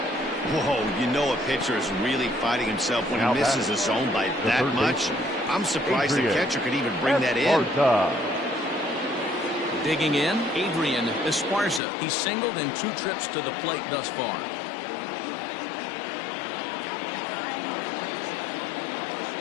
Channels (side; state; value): right; drops out; at 11.8 s